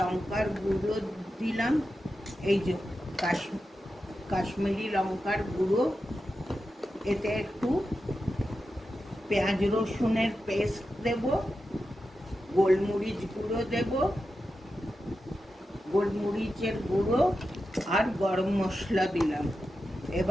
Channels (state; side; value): normal; both; correlation 0.90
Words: গুঁড়ো দিলাম, এই যে কাশ্মীরি লঙ্কার গুঁড়ো, এতে একটু পেঁয়াজ রসুনের পেস্ট দেব, গোলমরিচ গুঁড়ো দেব, গোলমরিচের গুঁড়ো আর গরম মশলা দিলাম।